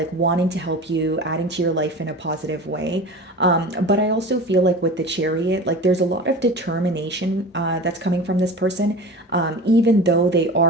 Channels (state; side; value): normal; both; correlation 0.34